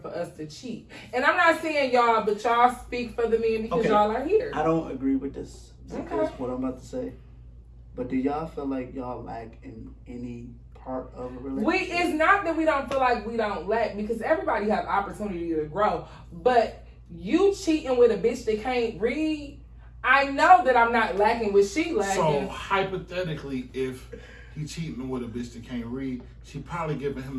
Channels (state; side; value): identical; both; correlation 1.00